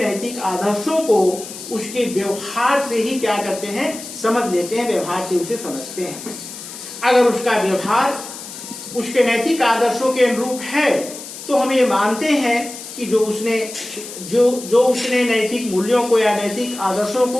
आदर्शों को उसके व्यवहार से ही क्या करते हैं, समझ लेते हैं, व्यवहार से उसे समझते हैं। अगर उसका व्यवहार उसके नैतिक आदर्शों के अनुरूप है तो हम ये मानते हैं कि जो उसने नैतिक मूल्यों को या नैतिक आदर्शों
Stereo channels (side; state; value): left; noise; hiss, 12 dB below the sound